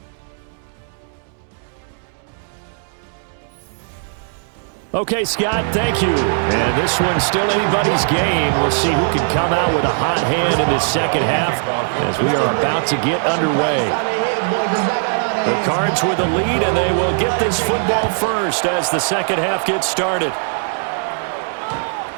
Okay, Scott, thank you. And this one's still anybody's game. We'll see who can come out with a hot hand in this second half as we are about to get underway. The Cards with the lead, and they will get this football first as the second half gets started.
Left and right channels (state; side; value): silent; left; digital silence